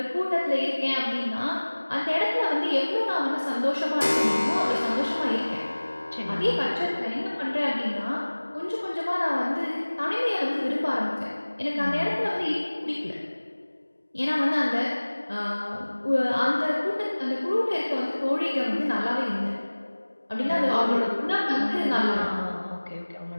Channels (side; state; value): both; inverted; correlation -1.00